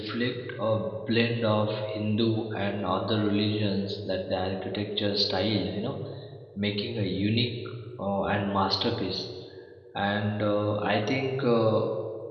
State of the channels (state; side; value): identical; both; correlation 1.00